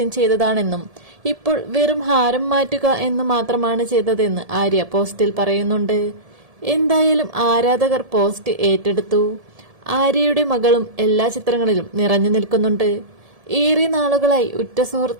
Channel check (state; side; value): late; left; 1.7 ms